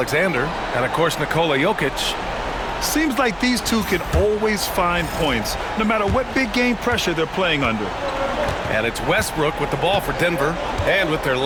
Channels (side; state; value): both; identical; correlation 1.00